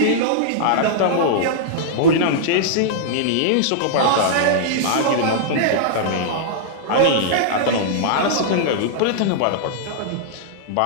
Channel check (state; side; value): different; both; correlation -0.01